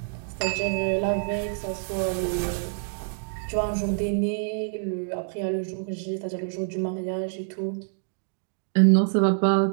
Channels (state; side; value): silent; left; digital silence